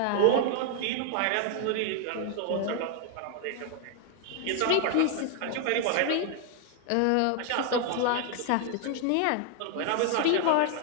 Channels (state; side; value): different; both; correlation 0.00